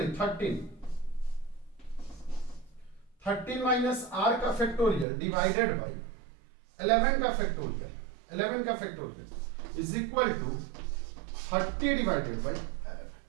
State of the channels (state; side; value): drops out; left; at 5.1 s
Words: 13 माइनस r का फैक्टोरियल डिवाइडेड बाय 11 का फैक्टोरियल, 11 का factorial is equal to 30 divided by 11।